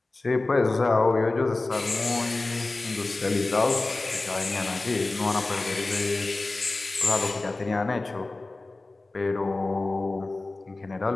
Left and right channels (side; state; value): right; quieter; 3.2 dB